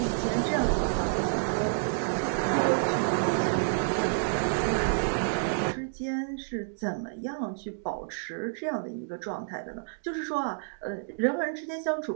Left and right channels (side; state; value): left; silent; digital silence